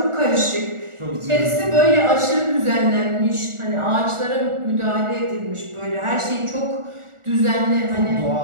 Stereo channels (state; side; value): late; left; 1.4 ms